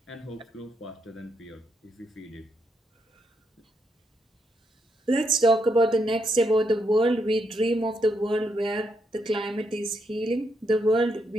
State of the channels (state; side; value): normal; both; correlation 0.79